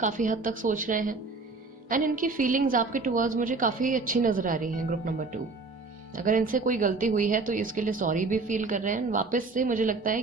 हद तक सोच रहे हैं, एंड इनकी फीलिंग्स आपके टुवर्ड्स मुझे काफ़ी अच्छी नज़र आ रही हैं ग्रुप नंबर 2। अगर इनसे कोई गलती हुई है तो इसके लिए सॉरी भी फील कर रहे हैं। वापस से मुझे लगता है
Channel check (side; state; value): left; quieter; 3.8 dB